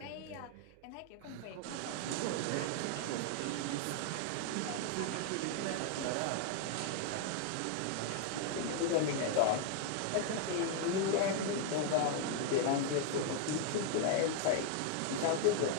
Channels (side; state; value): both; different; correlation 0.00